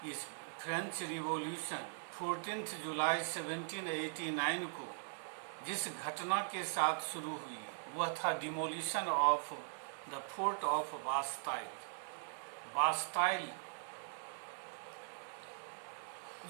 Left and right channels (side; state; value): left; silent; 51 dB below the other